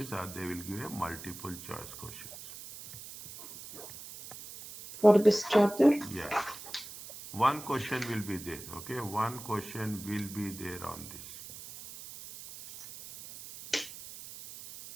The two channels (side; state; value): right; noise; hiss, 13 dB below the sound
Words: or they will give you a multiple choice questions. For this chapter? Yes. One question will be there. Okay, one question will be there on this.